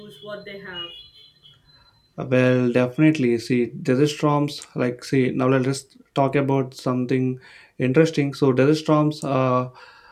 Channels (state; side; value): identical; both; correlation 1.00